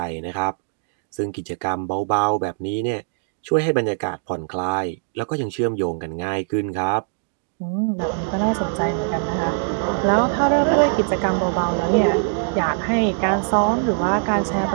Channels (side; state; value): left; silent; digital silence